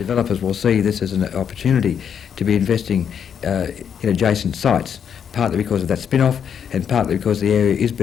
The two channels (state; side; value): quieter; right; 7.9 dB